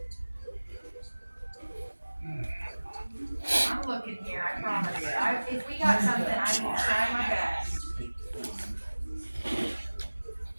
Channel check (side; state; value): both; inverted; correlation -1.00